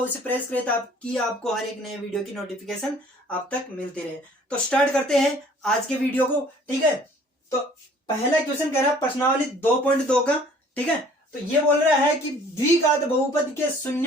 प्रेस करें ताकि आपको हर एक नए वीडियो की नोटिफिकेशन आप तक मिलती रहे। तो स्टार्ट करते हैं आज के वीडियो को। ठीक है, तो पहला क्वेश्चन कह रहा है प्रश्नावली 2.2 का। ठीक है, तो ये बोल रहा है कि द्विघात बहुपद के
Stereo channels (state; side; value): normal; both; correlation 0.54